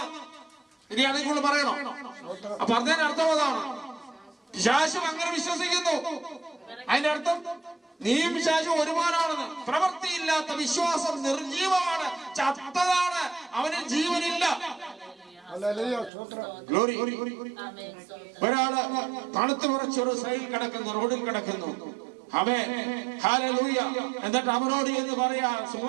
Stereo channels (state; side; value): drops out; left; at 16.1 s